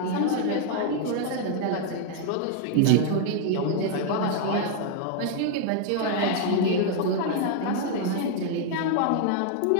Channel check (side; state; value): both; different; correlation 0.00